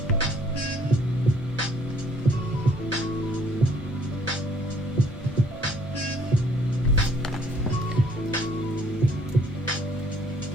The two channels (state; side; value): normal; both; correlation 0.62